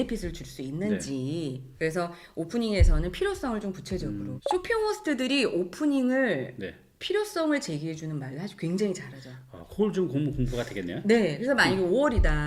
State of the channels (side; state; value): both; identical; correlation 1.00